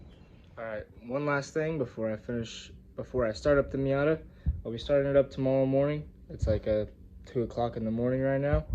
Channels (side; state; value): both; identical; correlation 1.00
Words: All right, one last thing before I start up the Miata. I'll be starting it up tomorrow morning. It's like 2 o'clock in the morning right now.